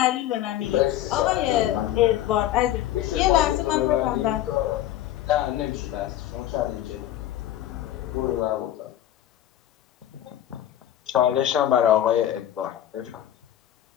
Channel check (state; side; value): quieter; right; 12.5 dB